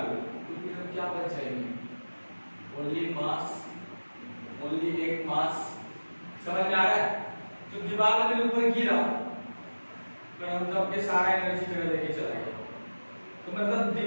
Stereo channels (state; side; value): inverted; both; correlation -1.00